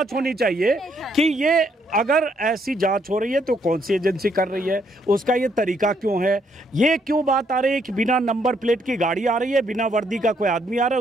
होनी चाहिए कि ये अगर ऐसी जांच हो रही है तो कौन सी एजेंसी कर रही है, उसका ये तरीका क्यों है, ये क्यों बात आ रही है कि बिना नंबर प्लेट की गाड़ी आ रही है, बिना वर्दी का कोई आदमी आ रहा है,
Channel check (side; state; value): both; normal; correlation 0.72